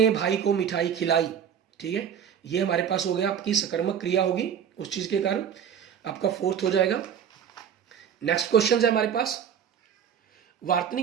भाई को मिठाई खिलाई, ठीक है, ये हमारे पास हो गया आपकी सकर्मक क्रिया होगी उस चीज के कारण, आपका 4th हो जाएगा। नेक्स्ट क्वेश्चन है हमारे पास,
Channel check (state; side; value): quieter; left; 8.3 dB